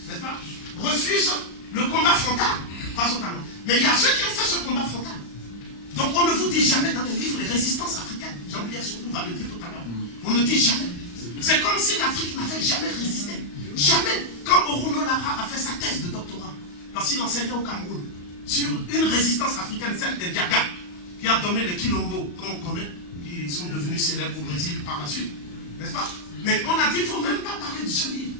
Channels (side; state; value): right; late; 35 ms